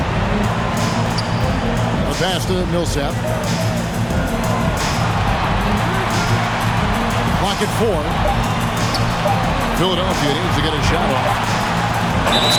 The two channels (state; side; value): identical; both; correlation 1.00